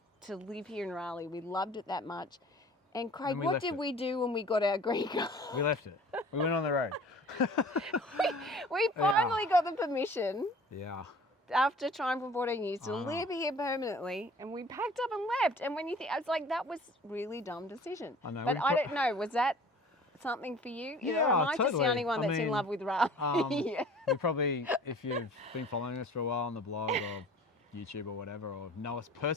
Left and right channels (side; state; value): both; normal; correlation 0.47